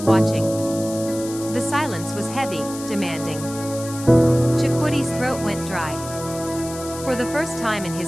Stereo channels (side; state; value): left; noise; hiss, 13 dB below the sound